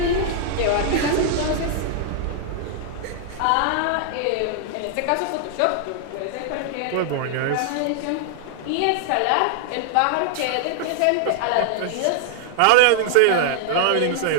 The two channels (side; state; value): both; different; correlation -0.01